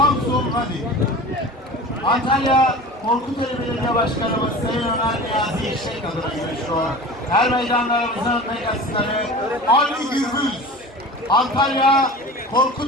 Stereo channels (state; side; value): normal; both; correlation 0.36